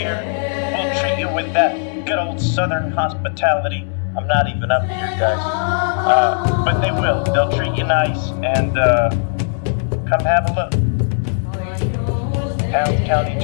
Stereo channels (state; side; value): silent; right; digital silence